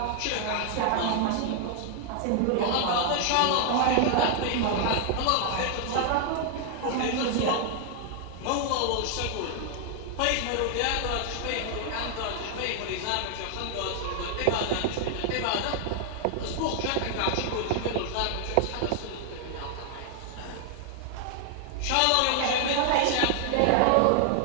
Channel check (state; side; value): different; both; correlation 0.00